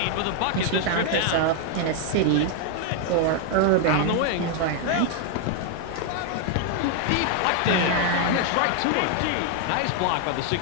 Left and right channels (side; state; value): both; different; correlation 0.00